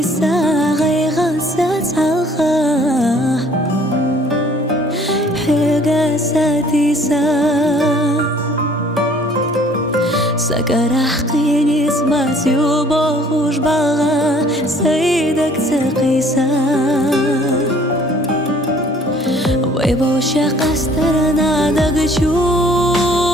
غيغا ساتسالخا حيغا ساتيسا سكرح قيني سماسي وبوخوش باغا سيدك تقيسا ويبو شاق استرنا دقشو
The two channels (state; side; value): normal; both; correlation 0.57